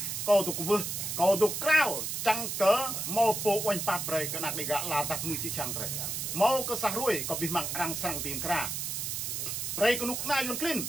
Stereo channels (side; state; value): right; noise; hiss, 3 dB below the sound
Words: cầu tục vư cầu tục cao chẳng cớ mau po oanh pap rồi cái nạc đi gạ là tập người chỉ chẳng rồi mau cái sah ruồi có bị mặn răng sang tìm kra rồi cái nục na yon clean